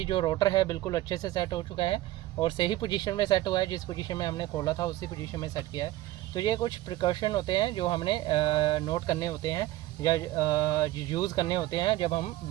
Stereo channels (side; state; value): left; quieter; 16.3 dB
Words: जो रोटर है बिल्कुल अच्छे से सेट हो चुका है और सही पोजीशन में सेट हुआ है, जिस पोजीशन में हमने खोला था उसी पोजीशन में सेट किया है। तो ये कुछ प्रिकॉशन होते हैं जो हमने नोट करने होते हैं या यूज़ करने होते हैं जब हम